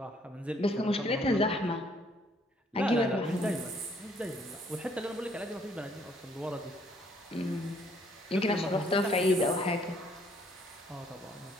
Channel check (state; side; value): normal; both; correlation 0.65